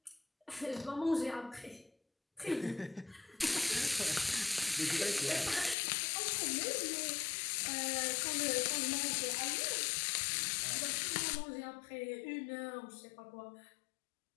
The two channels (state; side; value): drops out; right; at 5.8 s